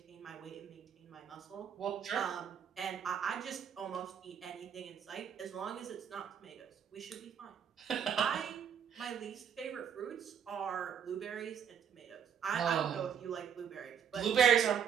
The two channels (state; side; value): quieter; left; 8.0 dB